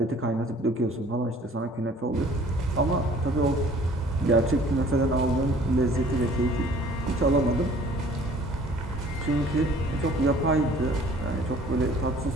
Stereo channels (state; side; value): normal; both; correlation 0.53